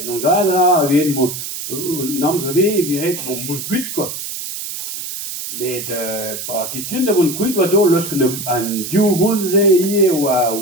non gadra, ven mo, namz ave, viret, bon, moun kuit, met pa question da vont kuit oa dol losk an diou voulze ie oa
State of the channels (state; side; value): noise; right; hiss, 7 dB below the sound